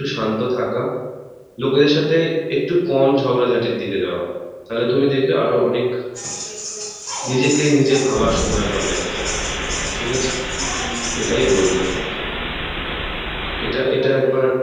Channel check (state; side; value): identical; both; correlation 1.00